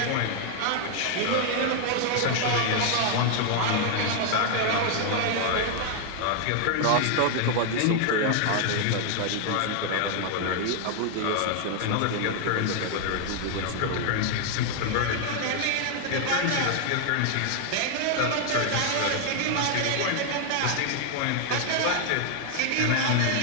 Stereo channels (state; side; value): different; both; correlation 0.00